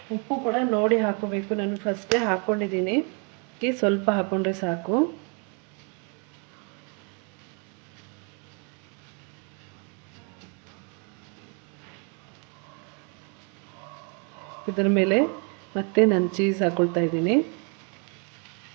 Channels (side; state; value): left; quieter; 36.6 dB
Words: ಕೂಡ ನೋಡಿ ಹಾಕೋಬೇಕು. ನಾನು ಫಸ್ಟೇ ಹಾಕ್ಕೊಂಡಿದ್ದೀನಿ, ಸ್ವಲ್ಪ ಹಾಕ್ಕೊಂಡ್ರೆ ಸಾಕು. ಇದರ ಮೇಲೆ ಮತ್ತೆ ನಾನು ಚೀಸ್ ಹಾಕ್ಕೊಳ್ತಾ ಇದ್ದೀನಿ.